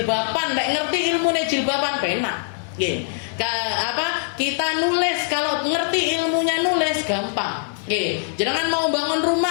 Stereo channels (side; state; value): right; silent; digital silence